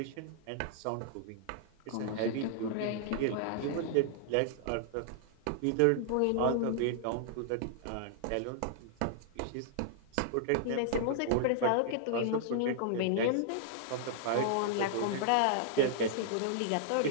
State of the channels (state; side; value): different; both; correlation -0.01